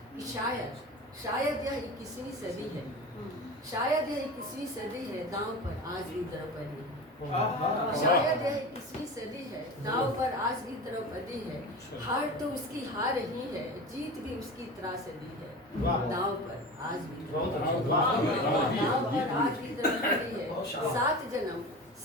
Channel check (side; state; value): both; normal; correlation 0.31